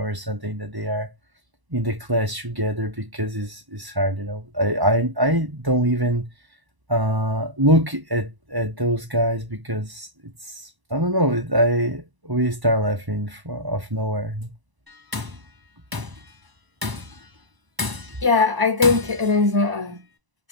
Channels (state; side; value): late; left; 1.0 ms